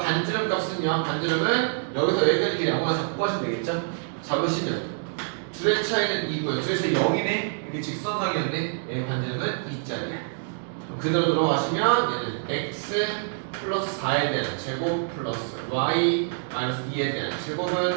값은요. 반지름은 여기서 여기까지 길이 아무나 잡고 하시면 되겠죠? 잡으시면 둘의 차이는 2고요. 둘의 차이 0이네. 이게 직선상이었네. 얘 반지름은 2짜리야. 그대로 들어가시면 얘는 x 플러스 4에 대한 제곱 플러스 y 마이너스 2에 대한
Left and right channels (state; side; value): silent; left; digital silence